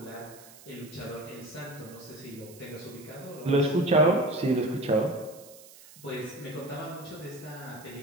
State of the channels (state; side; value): noise; right; hiss, 20 dB below the sound